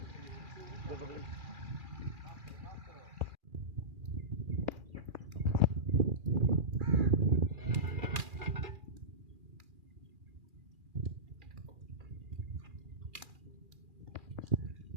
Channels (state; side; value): late; left; 2.4 ms